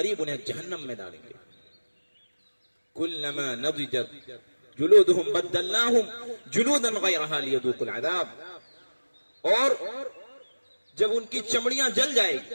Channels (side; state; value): both; inverted; correlation -1.00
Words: उन्हें जहन्नम में डालेंगे। कुल्लमा नज़िजत जुलूदुहुम बद्दलनाहुम जुलूदन गैरहा लियदूकुल अज़ाब। और जब उनकी चमड़ियां जल